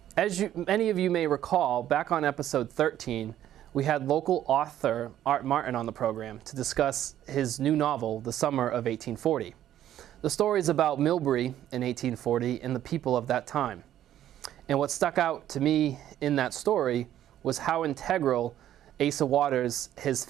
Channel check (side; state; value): left; quieter; 11.8 dB